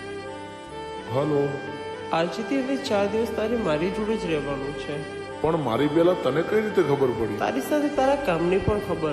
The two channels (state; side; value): identical; both; correlation 1.00